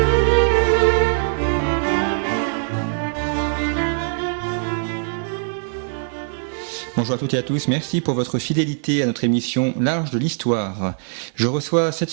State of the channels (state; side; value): silent; left; digital silence